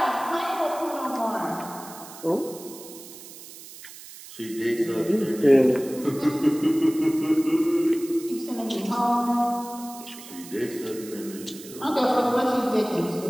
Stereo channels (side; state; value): right; noise; hiss, 16 dB below the sound